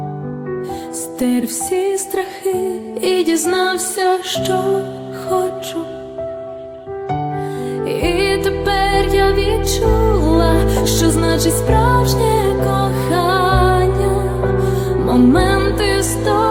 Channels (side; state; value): both; identical; correlation 1.00